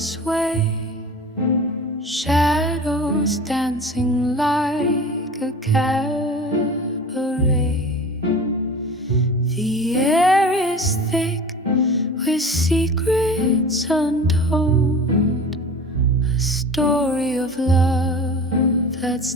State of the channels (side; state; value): both; normal; correlation 0.37